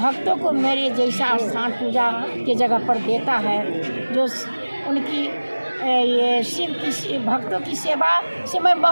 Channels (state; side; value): inverted; both; correlation -1.00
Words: को मेरे जैसा स्थान पूजा के जगह पर देता है, जो उनकी ये शिव की भक्तों की सेवा से मैं